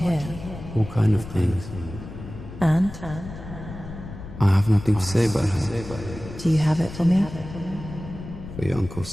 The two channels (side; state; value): left; noise; rumble, 12 dB below the sound